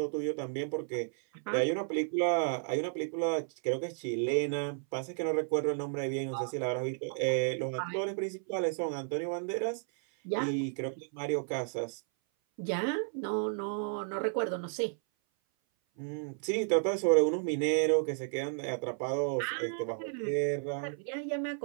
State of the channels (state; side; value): silent; left; 56 dB below the other